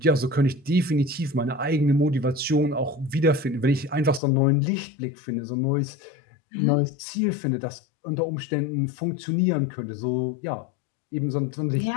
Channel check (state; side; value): drops out; right; at 4.2 s